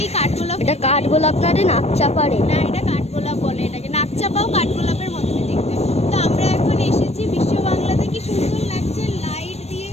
কাঠগোলাপ, এটা কাঠগোলাপ না রে, নাকচাপাড়ে। না এটা কাঠগোলাপ বলে এটাকে, নাকচাপাও কাঠগোলাপের মতনই দেখতে। তো আমরা এখন এসেছি বিশ্ব বাংলাতে, কি সুন্দর লাগছে লাইট দিয়ে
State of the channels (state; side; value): late; right; 0.31 ms